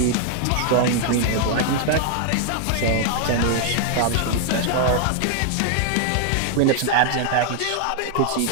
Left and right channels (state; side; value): different; both; correlation 0.00